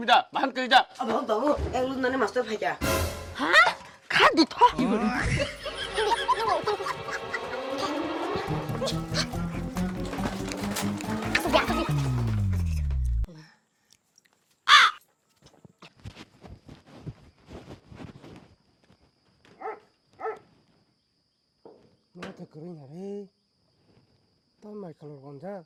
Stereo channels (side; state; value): both; identical; correlation 1.00